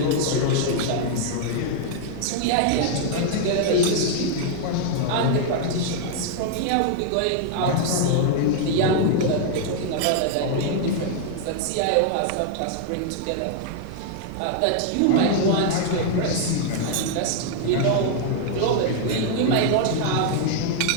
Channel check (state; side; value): different; both; correlation 0.00